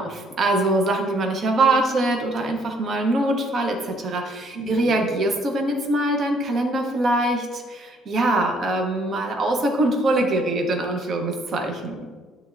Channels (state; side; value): normal; both; correlation 0.65